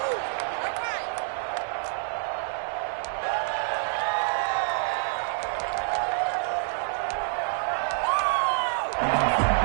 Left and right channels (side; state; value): left; silent; 60 dB below the other